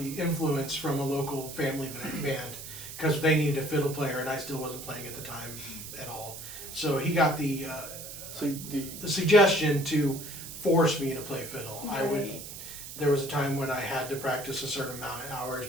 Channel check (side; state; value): right; noise; hiss, 11 dB below the sound